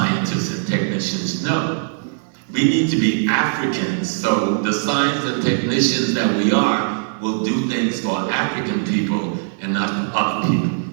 and technicians. No. We need to be Africans. So the scientists and technicians that we are will do things for African people and not for other people.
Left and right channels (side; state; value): left; silent; 66 dB below the other